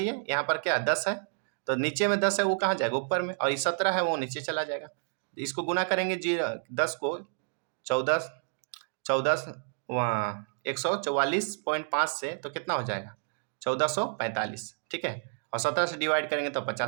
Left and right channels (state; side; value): silent; left; digital silence